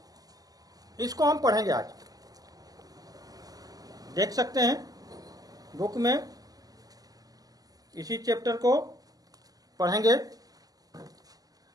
इसको हम पढ़ेंगे आज। देख सकते हैं बुक में, इसी चैप्टर को पढ़ेंगे।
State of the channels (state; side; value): late; left; 0.18 ms